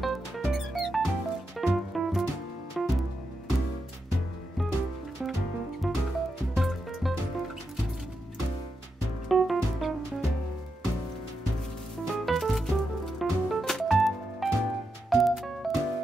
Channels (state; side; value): normal; both; correlation 0.86